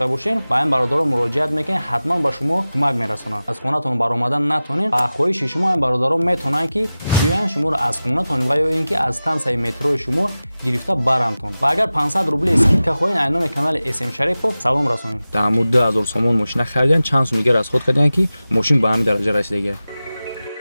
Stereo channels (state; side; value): inverted; both; correlation -0.95